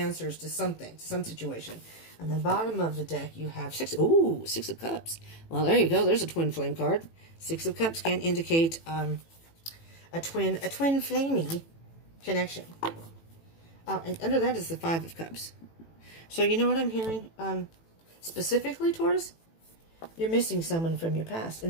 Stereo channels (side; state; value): right; late; 18 ms